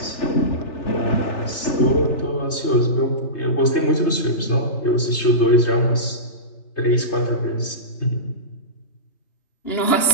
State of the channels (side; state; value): right; late; 3.2 ms